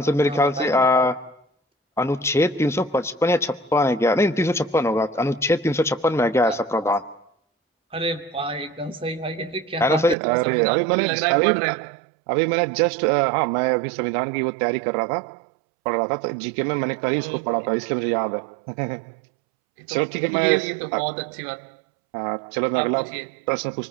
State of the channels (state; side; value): drops out; left; at 10.2 s